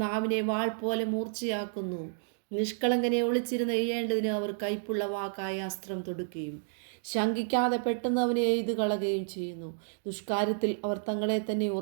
നാവിനെ വാൾ പോലെ മൂർച്ചയാക്കുന്നു. നിഷ്കളങ്കനെ ഒളിച്ചിരുന്ന് എയ്യേണ്ടതിന് അവർ കൈപ്പുള്ള വാക്കായ അസ്ത്രം തൊടുക്കുകയും ശങ്കിക്കാതെ പെട്ടെന്ന് അവനെ എയ്തു കളയുകയും ചെയ്യുന്നു. ദുഷ്കാര്യത്തിൽ അവർ തങ്ങളെ തന്നെ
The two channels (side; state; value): left; silent; digital silence